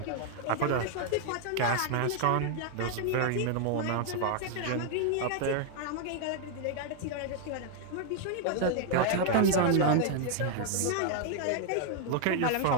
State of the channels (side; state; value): both; different; correlation 0.00